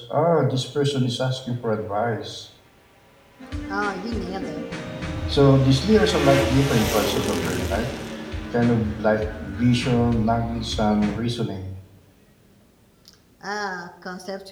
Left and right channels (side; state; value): both; identical; correlation 1.00